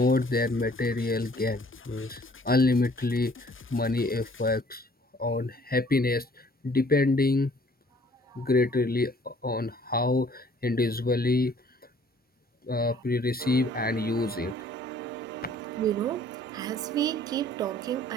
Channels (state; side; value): normal; both; correlation 0.57